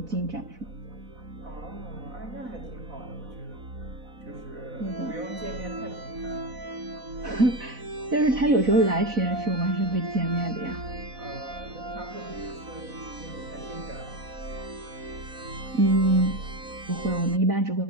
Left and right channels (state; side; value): late; left; 4.1 ms